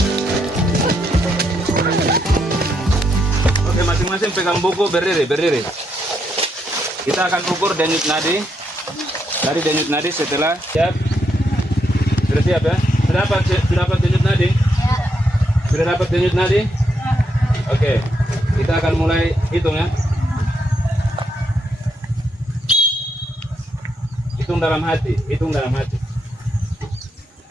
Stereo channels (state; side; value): normal; both; correlation 0.78